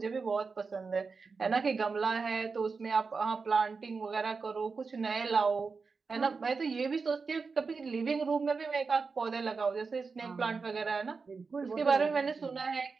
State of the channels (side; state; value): left; quieter; 4.7 dB